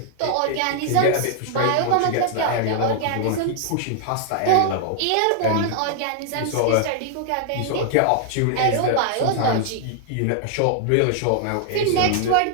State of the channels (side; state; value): both; different; correlation -0.01